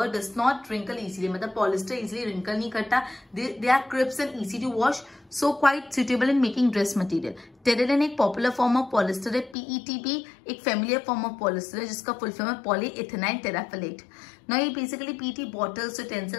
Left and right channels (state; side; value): drops out; right; at 9.6 s